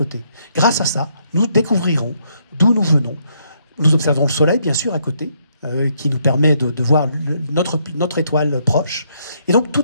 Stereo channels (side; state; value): both; inverted; correlation -0.73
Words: Grâce à ça, nous découvrirons d'où nous venons. Nous observerons le Soleil, bien sûr, à côté, qui nous permet de voir notre étoile proche. Et donc,